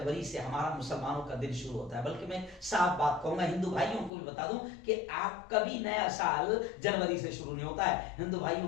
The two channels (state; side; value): drops out; right; at 4.1 s